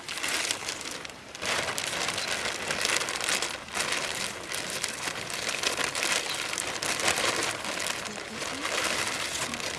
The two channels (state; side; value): identical; both; correlation 1.00